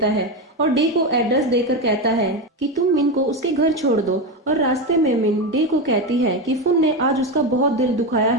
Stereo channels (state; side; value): normal; both; correlation 0.14